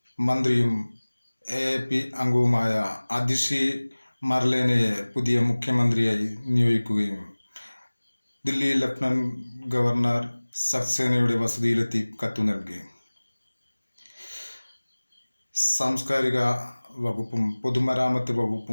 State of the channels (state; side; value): inverted; both; correlation -1.00